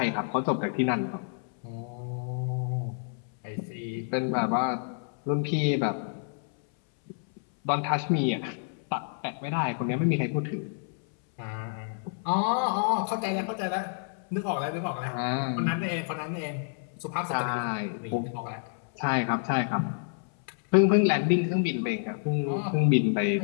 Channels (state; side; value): silent; right; 59 dB below the other